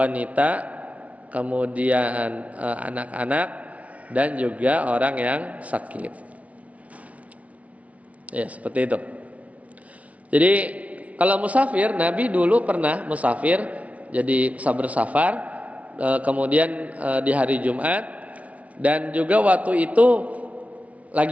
kemudian anak-anak, dan juga orang yang sakit. Ya seperti itu. Jadi kalau musafir, Nabi dulu pernah musafir, jadi bersafar, kemudian di hari Jumat, dan juga waktu itu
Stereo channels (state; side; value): late; left; 0.067 ms